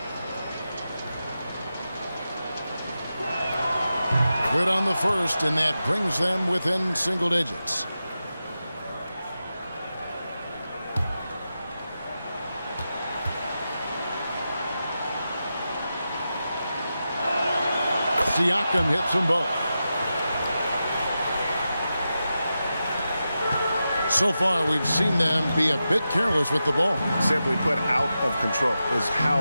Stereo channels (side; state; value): both; inverted; correlation -0.90